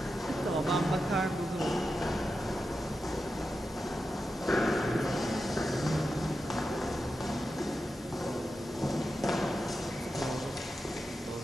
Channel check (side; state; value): both; normal; correlation 0.90